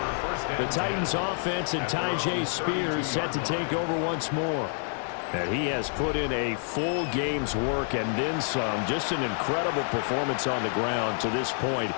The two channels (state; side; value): silent; right; 57 dB below the other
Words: The Titans offense and Tyjae Spears set to take over once more. And he has put in a full game's work and then some. Just an incredible performance on the ground to this point